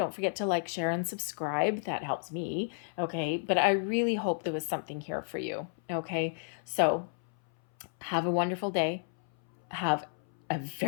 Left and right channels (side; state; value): right; silent; 57 dB below the other